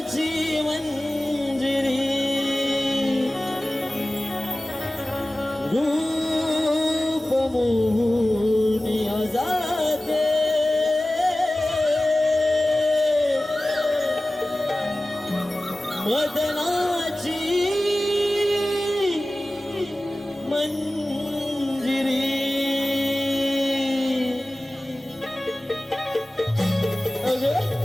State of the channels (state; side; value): normal; both; correlation 0.97